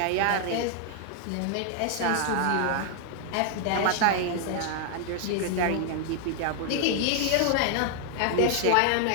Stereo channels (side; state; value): both; different; correlation 0.00